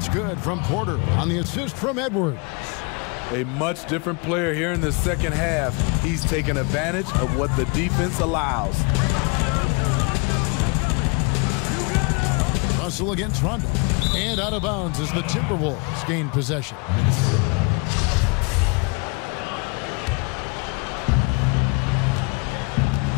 good from Porter on the assist from Edwards. A much different player here in the second half. He's taken advantage of what the defense allows. Russell against Rondo. And out of bounds as the Timberwolves gain possession.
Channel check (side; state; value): right; quieter; 31.2 dB